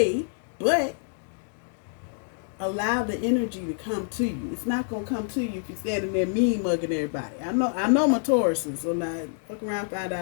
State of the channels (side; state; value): right; silent; digital silence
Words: but allow the energy to come to you. It's not going to come to you if you're standing there mean mugging everybody. I know my Tauruses, so now fuck around, find